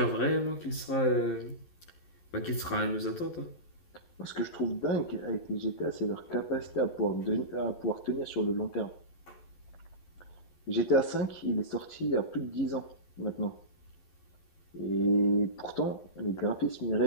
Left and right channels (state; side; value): late; right; 11 ms